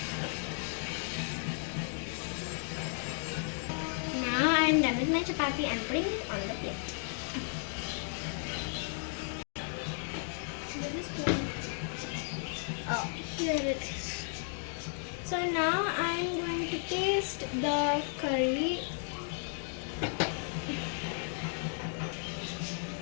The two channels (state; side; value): silent; right; 55 dB below the other